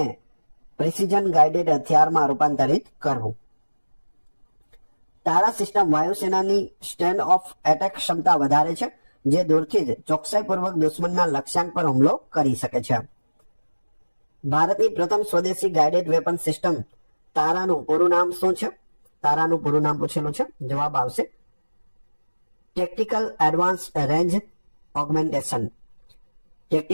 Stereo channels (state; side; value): inverted; both; correlation -1.00